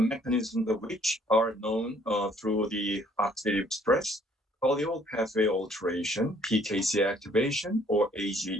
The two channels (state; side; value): normal; both; correlation 0.62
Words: of which are known through the oxidative stress, polyol pathway alteration, PKC activation, or